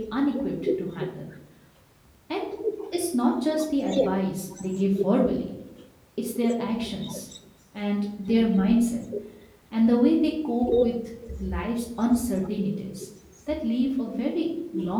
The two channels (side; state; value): both; identical; correlation 1.00